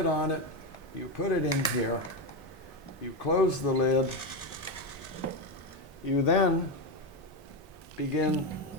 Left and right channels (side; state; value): both; normal; correlation 0.11